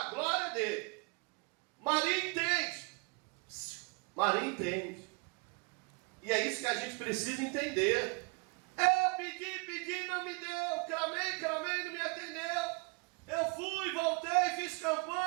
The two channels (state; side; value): quieter; left; 29.9 dB